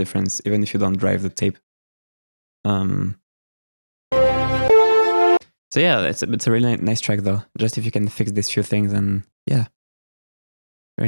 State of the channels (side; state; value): both; inverted; correlation -1.00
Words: even if you don't drive the tape. So yeah, it's a really nice track though. Just if you can fix these few things, and yeah,